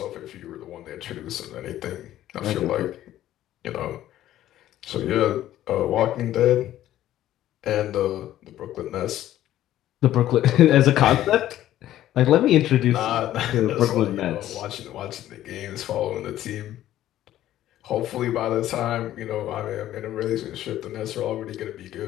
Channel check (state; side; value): quieter; right; 13.1 dB